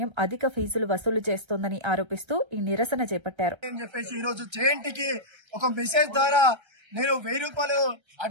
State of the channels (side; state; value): left; late; 1.3 ms